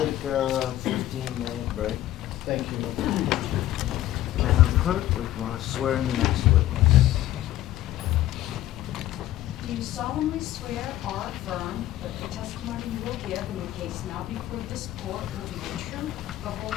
a 15-minute break. Thank you. Madam Clerk, we want to swear in the next witness. Do you solemnly swear or affirm that the testimony you will give in the case now before this court will be the truth, the whole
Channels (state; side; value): quieter; right; 14.0 dB